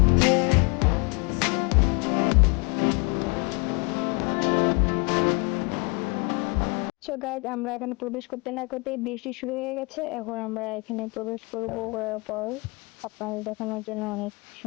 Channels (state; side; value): quieter; right; 29.2 dB